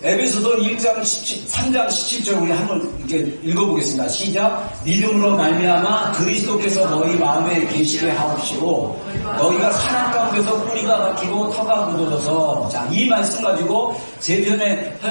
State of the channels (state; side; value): inverted; both; correlation -1.00